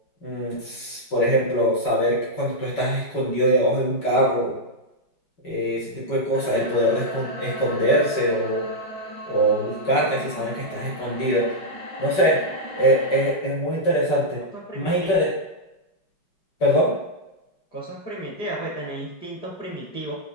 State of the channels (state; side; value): late; right; 5.3 ms